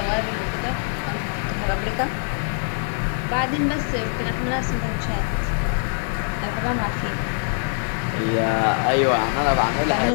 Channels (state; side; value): silent; right; digital silence